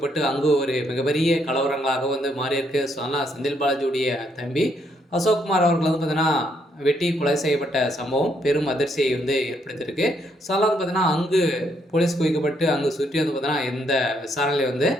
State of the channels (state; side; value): normal; both; correlation 0.73